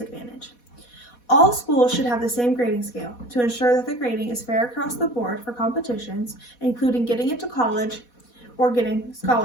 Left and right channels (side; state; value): right; late; 4.1 ms